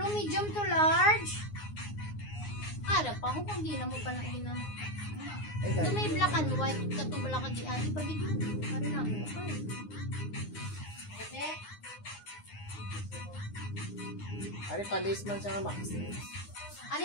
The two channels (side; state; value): right; late; 9.7 ms